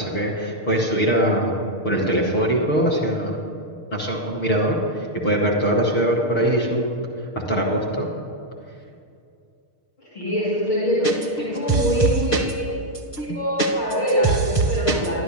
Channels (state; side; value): late; right; 6.6 ms